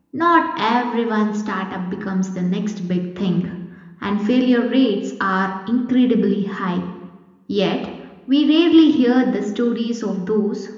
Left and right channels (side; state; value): both; identical; correlation 1.00